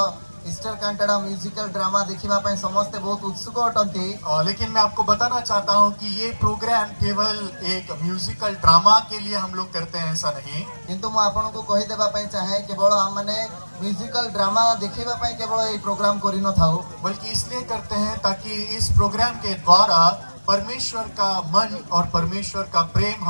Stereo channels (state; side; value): inverted; both; correlation -1.00